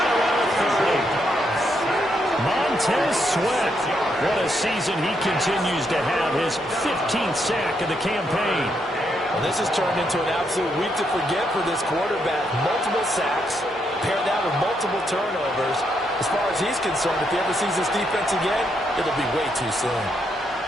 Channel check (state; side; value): normal; both; correlation 0.78